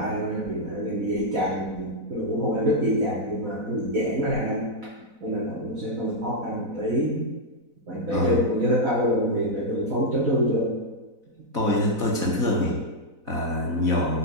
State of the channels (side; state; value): left; late; 4.0 ms